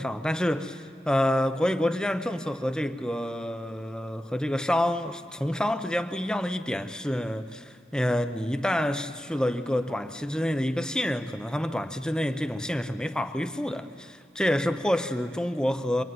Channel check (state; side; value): normal; both; correlation 0.91